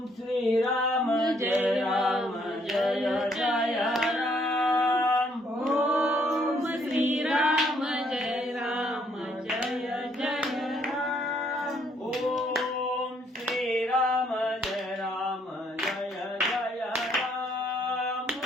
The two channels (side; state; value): both; normal; correlation 0.68